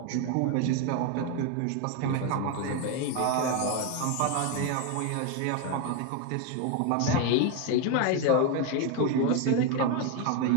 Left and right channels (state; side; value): different; both; correlation 0.02